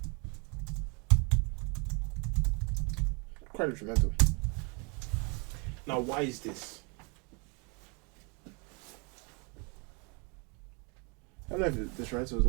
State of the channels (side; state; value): left; quieter; 33.3 dB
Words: quite detrimental. Now, why is this? I don't know if detrimental is